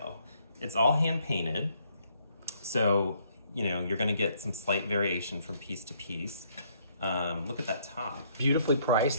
It's all hand painted. So, you're gonna get some slight variation from piece to piece. Look at that top. Beautifully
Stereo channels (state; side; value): inverted; both; correlation -0.67